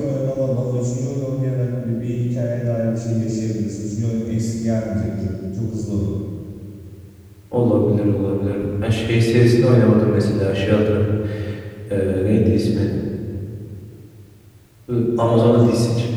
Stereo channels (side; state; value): both; identical; correlation 1.00